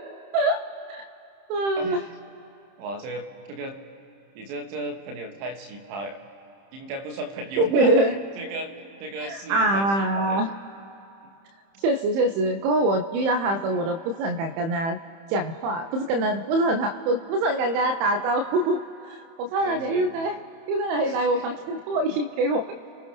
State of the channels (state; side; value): late; left; 30 ms